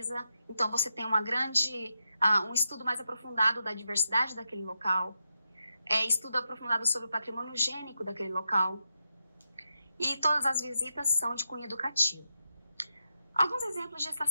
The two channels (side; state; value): both; inverted; correlation -0.86